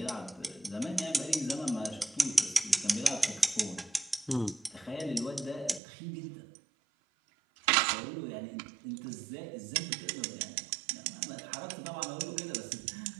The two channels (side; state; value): left; drops out; at 5.8 s